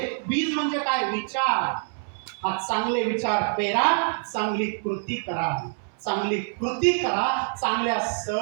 बीज म्हणजे काय? विचार. हा चांगले विचार पेरा, चांगली कृती करा. चांगली कृती करा, चांगल्या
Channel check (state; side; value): silent; left; 61 dB below the other